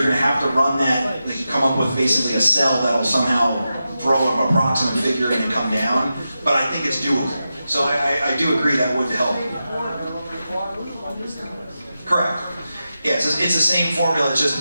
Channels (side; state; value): both; inverted; correlation -0.90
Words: going to have to run that, like, come up with basically a cell that'll somehow throw an approximate figure in and come down, but I think it's doable. So I do agree that would help. Correct. Yeah, it's the same formula, it's just